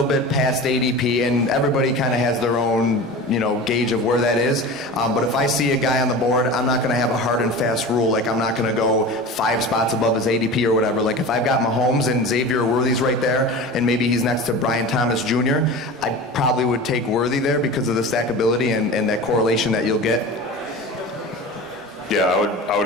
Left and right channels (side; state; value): both; normal; correlation 0.33